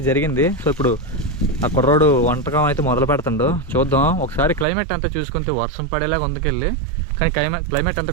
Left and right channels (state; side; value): drops out; left; at 4.7 s